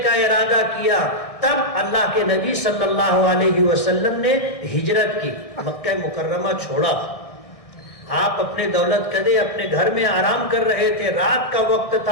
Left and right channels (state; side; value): late; right; 1.6 ms